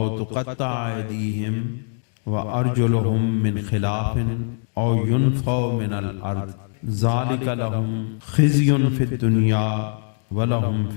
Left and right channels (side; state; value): right; silent; digital silence